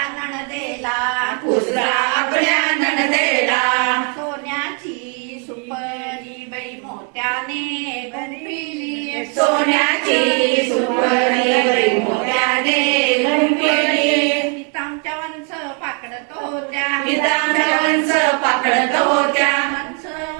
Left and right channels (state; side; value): quieter; left; 39.0 dB